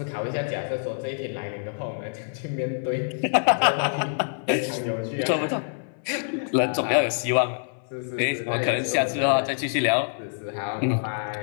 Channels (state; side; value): silent; right; 61 dB below the other